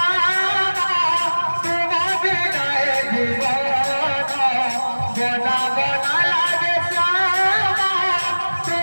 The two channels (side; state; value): both; inverted; correlation -1.00